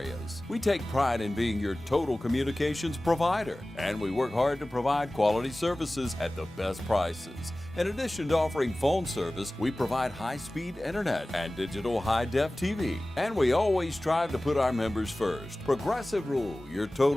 We take pride in being your total communications provider, and we work hard to provide quality services at the best prices. In addition to offering phone service, we provide high-speed internet and digital high-def TV. And we always strive to put our members first. Progressive Rural, your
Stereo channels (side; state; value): both; normal; correlation 0.97